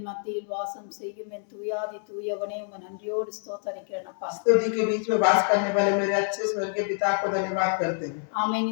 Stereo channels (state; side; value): silent; right; 58 dB below the other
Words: மத்தியில் வாசம் செய்யும் என் தூயாதி தூயவனே உம்மை நன்றியோடு ஸ்தோத்தரிக்கிறேன் அப்பா. स्तुति के बीच में वास करने वाले मेरे अच्छे स्वर्ग के पिता को धन्यवाद करते हैं। ஆமென்.